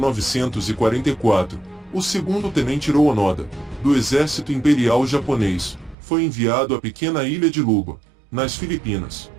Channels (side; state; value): left; drops out; at 6.0 s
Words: o segundo tenente Hiroo Onoda, do Exército Imperial Japonês, foi enviado à pequena ilha de Luba, nas Filipinas.